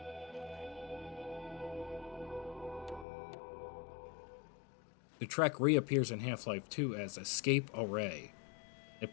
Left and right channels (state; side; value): drops out; right; at 3.1 s